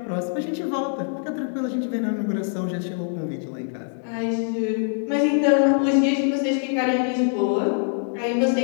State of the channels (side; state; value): right; silent; digital silence